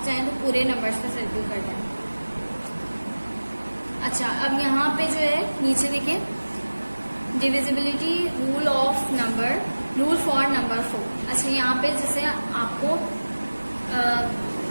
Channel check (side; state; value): both; inverted; correlation -1.00